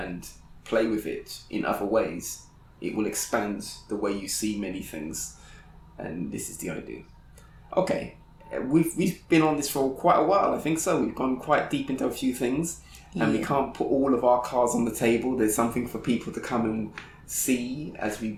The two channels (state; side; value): identical; both; correlation 1.00